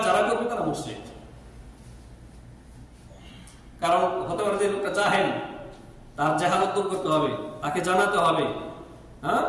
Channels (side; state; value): both; identical; correlation 1.00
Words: যারা করবে তারা মুশরিক। কারণ হতে পারে যে লোকটা জাহেল, তার জাহালত দূর করতে হবে, তাকে জানাতে হবে, হ্যাঁ,